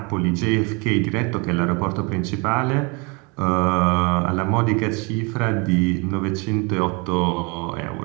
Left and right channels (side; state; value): left; quieter; 30.3 dB